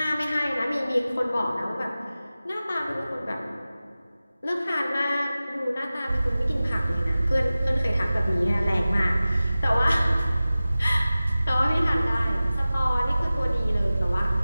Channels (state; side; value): inverted; both; correlation -0.96